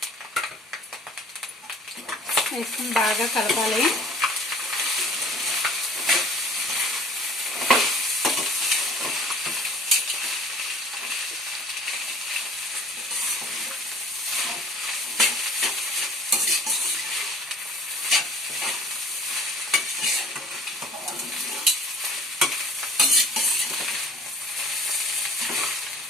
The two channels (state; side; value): normal; both; correlation 0.50